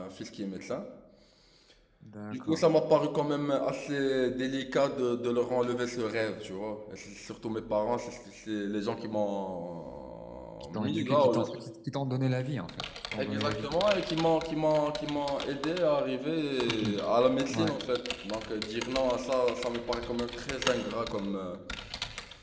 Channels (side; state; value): both; identical; correlation 1.00